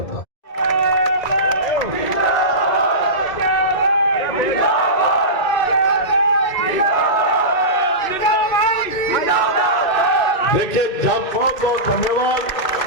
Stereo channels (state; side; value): late; right; 2.6 ms